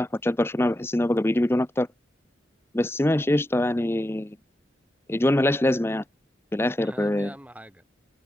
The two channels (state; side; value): normal; both; correlation 0.87